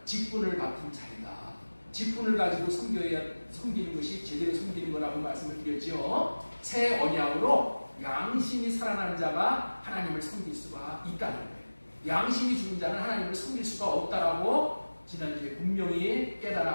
직분을 맡은 자이다. 직분을 가지고 섬기는 것이 제대로 섬기는 거라고 말씀을 드렸죠. 새 언약으로 양심이 살아난 자가 하나님을 섬길 수가 있다는 거예요. 양심이 죽은 자는 하나님을 섬길 수가 없다라고 지난주에 분명히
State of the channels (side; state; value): both; inverted; correlation -1.00